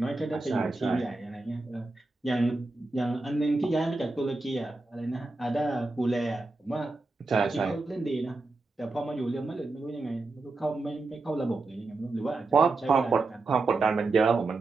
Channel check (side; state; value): left; quieter; 3.4 dB